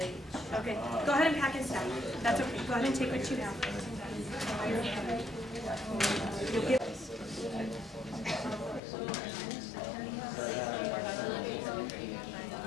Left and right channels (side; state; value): right; drops out; at 8.8 s